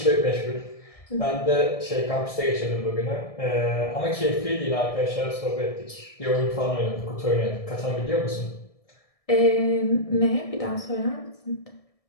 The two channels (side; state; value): right; late; 1.6 ms